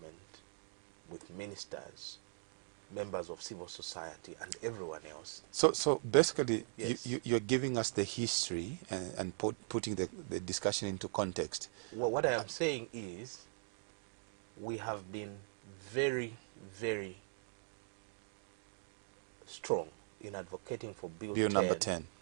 with ministers, members of civil society, and everyone else. So basically, Yes. you're giving us the history and putting the discussion into context. Well, what I am saying is we have been very, very strong in advocating for Bill Number 10.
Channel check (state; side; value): silent; left; digital silence